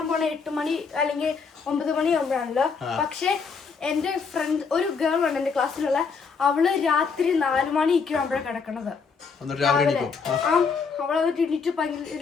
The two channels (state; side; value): quieter; right; 5.4 dB